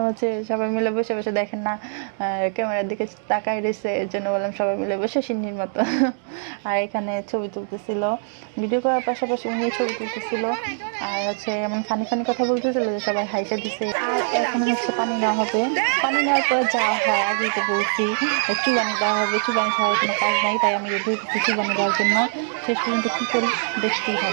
হচ্ছে সবাই মিলে বসে বসে দেখেন না ক্যামেরার দিকে তাকাই রয়েছে, এর জন্য বললাম সবাই মিলে বসে সিন্নির মতো। আর এখানে ছবি তুলতেছিল, ভিডিও করার পাশাপাশি উনি ছবি তুলতেছিল। আর হচ্ছে এমন ফানি ফানি কথা বলতেছিল যে সবাই হাইসা দিছে। আর এখন হচ্ছে পানি নেওয়া হবে। পানি নেওয়ার পর যা হয় আগেই তো বলছি, চুবানি দেওয়া হবে। চুবানি ছাড়ার কোনো কাজ নাই, তাই আমি রেডি হচ্ছি চুবানি দেওয়ার জন্য। শেষ পর্যন্ত কী করি দেখতেই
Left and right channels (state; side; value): silent; left; 60 dB below the other